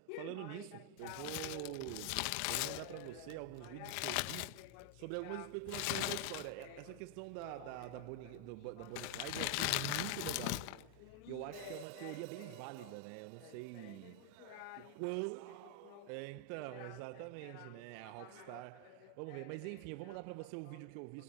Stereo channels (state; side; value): different; both; correlation 0.00